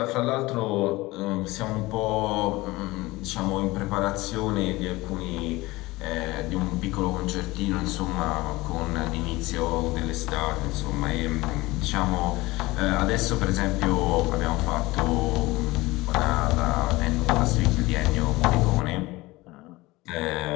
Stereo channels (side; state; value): right; quieter; 20.5 dB